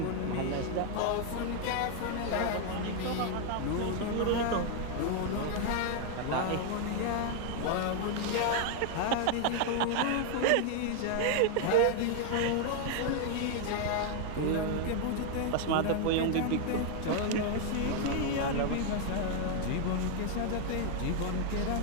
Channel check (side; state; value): both; different; correlation 0.00